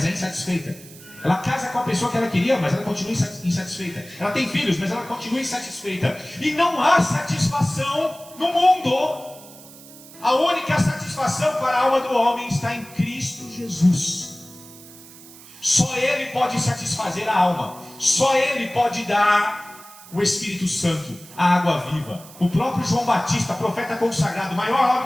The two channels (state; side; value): noise; right; hiss, 19 dB below the sound